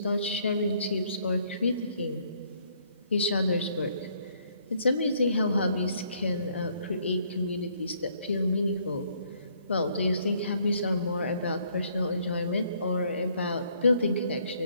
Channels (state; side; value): inverted; both; correlation -0.66